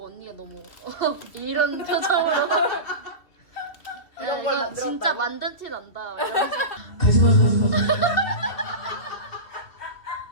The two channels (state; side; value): late; right; 2.7 ms